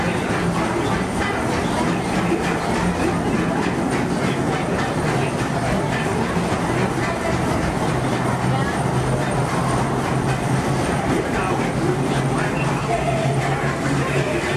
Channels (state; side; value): identical; both; correlation 1.00